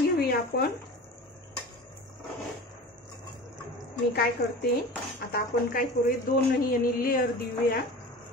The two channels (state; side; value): normal; both; correlation 0.35